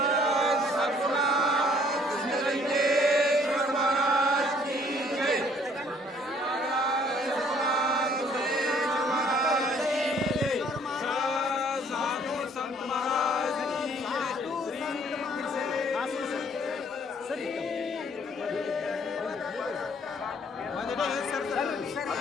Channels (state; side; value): normal; both; correlation 0.60